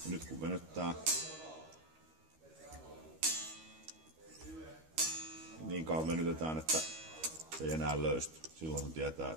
Ja nyt kun venyttää, niin kauan venytetään, että se ei enää löysty. Silloin se tietää,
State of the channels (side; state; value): left; late; 13 ms